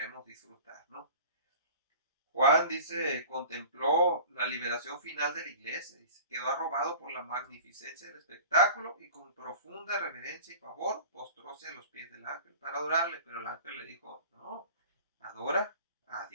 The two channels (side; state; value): both; inverted; correlation -0.41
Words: disfrutar, ¿no? Juan dice, contempló la liberación final de la iglesia, dice, quedó arrobado por la magnificencia del espectáculo y con profunda reverencia y favor postróse a los pies del ángel para adorarle, pero el ángel le dijo, no, adora a